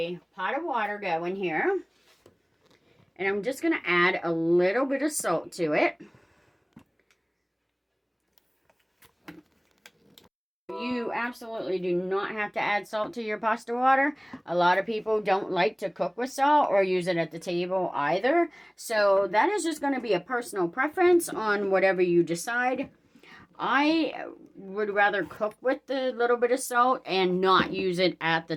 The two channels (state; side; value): identical; both; correlation 1.00